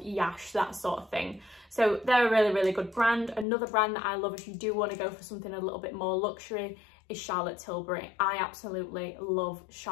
that sort of thing. So they're a really good brand. Another brand that I love if you do want to go for something a little bit more luxury is Charlotte Tilbury. I absolutely love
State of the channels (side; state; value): right; drops out; at 3.5 s